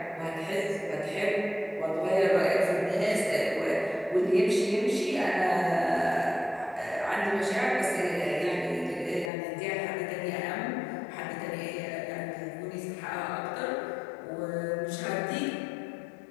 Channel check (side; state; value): right; drops out; at 9.3 s